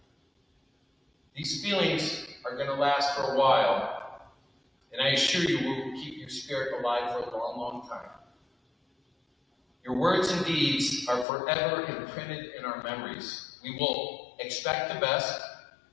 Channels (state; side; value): drops out; right; at 11.2 s